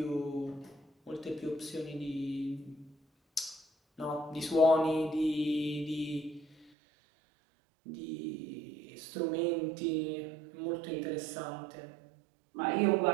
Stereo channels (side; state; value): left; drops out; at 6.7 s